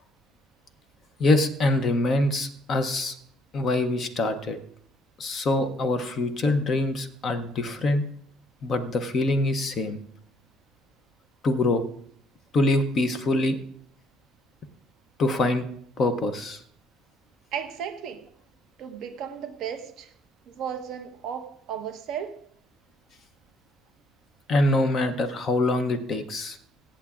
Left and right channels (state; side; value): normal; both; correlation 0.67